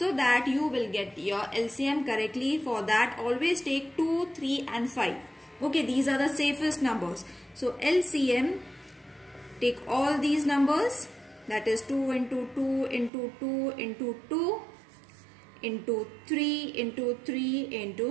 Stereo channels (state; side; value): drops out; left; at 13.1 s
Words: that you will get your LCM correctly. For that always take 2, 3 and 5. Okay, these are the safest numbers. So LCM, take all these numbers. That is 2 into 2 into 2 into 2 into 3 into 3